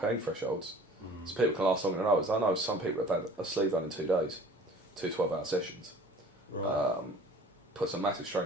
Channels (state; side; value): normal; both; correlation 0.47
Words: thresholds. So people can last longer than others. I know some people have had a sleeve done in 2 days, 2 12-hour sessions. Right. Puts a massive strain